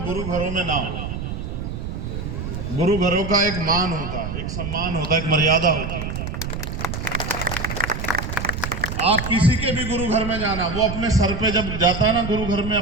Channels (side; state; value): right; noise; rumble, 5 dB below the sound